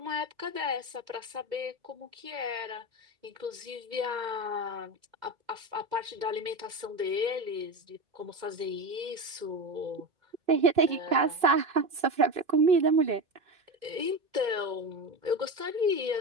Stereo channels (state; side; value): late; left; 2.1 ms